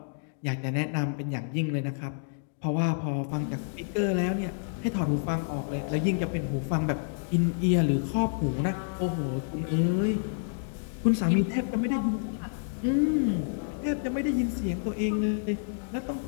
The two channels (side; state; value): right; silent; digital silence